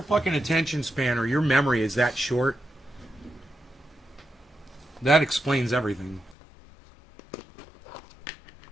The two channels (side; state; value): right; drops out; at 6.4 s